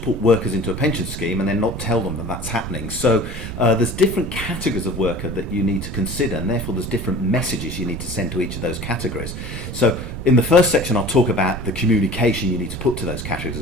put workers into a pension scheme and then not tell them that that's happening. So there's different categories of worker that you need to consider, and therefore there's different messages you need to send to each of those categories. So in the first section, I'll talk about the communication you need to put to those categories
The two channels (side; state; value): right; noise; rumble, 8 dB below the sound